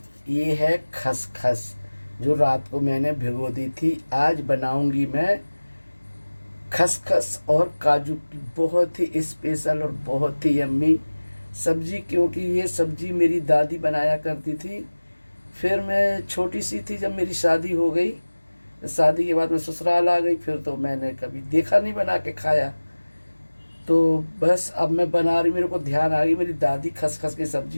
ये है खसखस जो रात को मैंने भिगो दी थी। आज बनाऊंगी मैं खसखस और काजू की बहुत ही स्पेशल और बहुत ही यम्मी सब्जी, क्योंकि ये सब्जी मेरी दादी बनाया करती थी। फिर मैं छोटी सी थी जब मेरी शादी हो गई। शादी के बाद मैं ससुराल आ गई, फिर तो मैंने कभी देखा नहीं बना के खाया। तो बस अब मैं बना रही, मेरे को ध्यान आ गई मेरी दादी खसखस की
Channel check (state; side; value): inverted; both; correlation -1.00